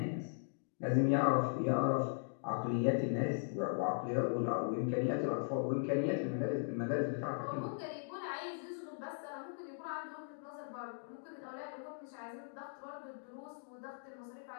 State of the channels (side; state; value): right; silent; digital silence